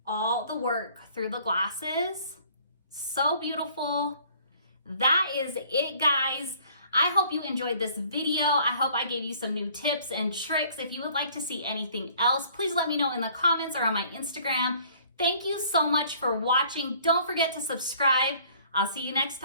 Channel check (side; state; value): both; inverted; correlation -0.56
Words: all the work through the glasses. So beautiful. That is it, guys. I hope you enjoyed this video. I hope I gave you some new tips and tricks. If you would like to see anything else, please let me know in the comments or on my Instagram. Thank you so much for watching. Don't forget to subscribe. I'll see you next